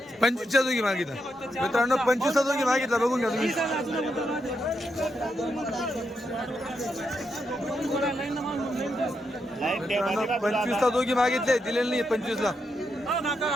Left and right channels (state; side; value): normal; both; correlation 0.82